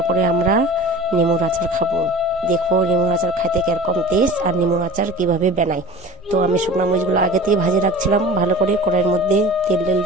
আমরা নেমুর আচার খাবো। দেখবো নেমুর আচার খাইতে কিরকম টেস্ট আর নেমুর আচার কিভাবে বানাই। তো আমি শুকনা মরিচগুলো আগে থেকে ভাজে রাখছিলাম, ভালো করে কড়াইয়ের মধ্যে তেল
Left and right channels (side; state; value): both; normal; correlation 0.39